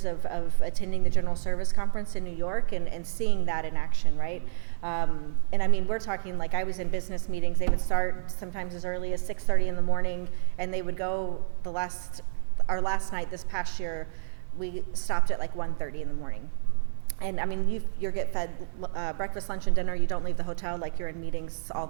of attending the General Service Conference in New York and seeing that in action, right? And I mean, we're talking like I was in business meetings. They would start sometimes as early as 6:30 in the morning, and they would go our last night this past year, we stopped at like 1:30 in the morning. And I mean, you get fed breakfast, lunch, and dinner. You don't leave the hotel, like you're in meetings all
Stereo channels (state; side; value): silent; left; 59 dB below the other